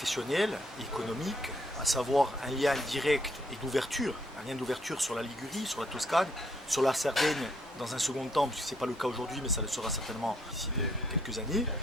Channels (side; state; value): both; normal; correlation 0.71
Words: et économique, à savoir un lien direct et d'ouverture, un lien d'ouverture sur la Ligurie, sur la Toscane, sur la Sardaigne dans un second temps, puisque ce n'est pas le cas aujourd'hui, mais ça le sera certainement d'ici quelques années,